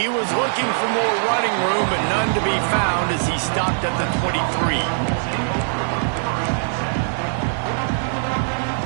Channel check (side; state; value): left; silent; 65 dB below the other